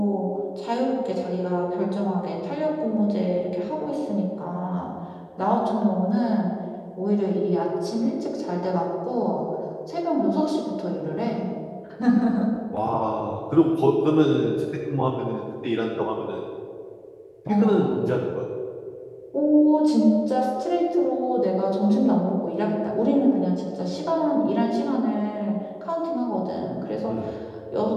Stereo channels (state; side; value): identical; both; correlation 1.00